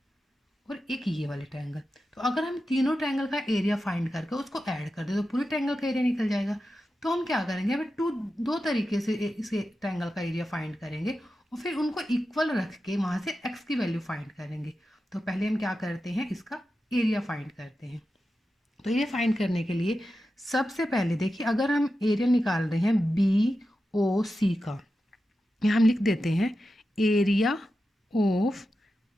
और एक ये वाले ट्रायंगल। तो अगर हम तीनों ट्रायंगल का एरिया फाइंड करके उसको ऐड कर दे तो पूरे ट्रायंगल का एरिया निकल जाएगा। तो हम क्या करेंगे, हमें दो तरीके से इसे ट्रायंगल का एरिया फाइंड करेंगे और फिर उनको इक्वल रख के वहाँ से एक्स की वैल्यू फाइंड करेंगे। तो पहले हम क्या करते हैं, इसका एरिया फाइंड करते हैं। तो एरिया फाइंड करने के लिए सबसे पहले देखिए, अगर हम एरिया निकाल रहे हैं बी ओ सी का, यहाँ हम लिख देते हैं area of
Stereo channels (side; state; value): both; normal; correlation 0.91